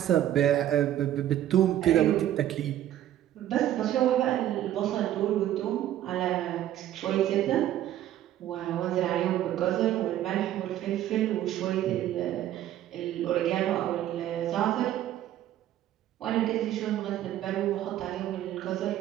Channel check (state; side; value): quieter; left; 12.4 dB